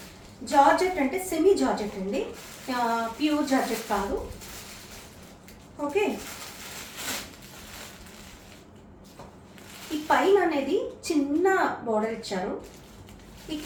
జార్జెట్ అంటే సెమీ జార్జెట్ అండి, ప్యూర్ జార్జెట్ కాదు. ఓకే, ఈ పైన అనేది చిన్న బోర్డర్ ఇచ్చారు, ఈ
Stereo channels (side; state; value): both; identical; correlation 1.00